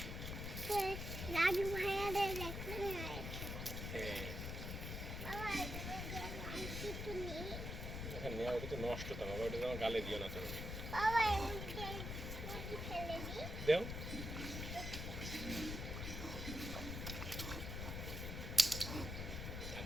রাজু ভাইয়াদের দেখতে হয়েছে। বাবা কিছু নেই। এখানে নেওয়া ওটা তো নষ্ট তো বাবা, ওটা আমার গালে দিও না তুমি। বাবা এদিকে ফেলে দিই। দেও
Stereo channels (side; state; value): left; noise; rumble, 4 dB below the sound